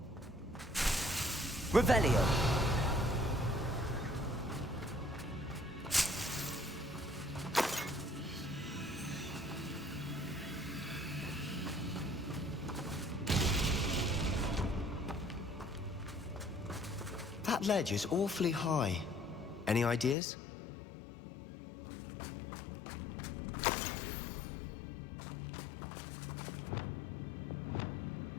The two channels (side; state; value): right; drops out; at 20.2 s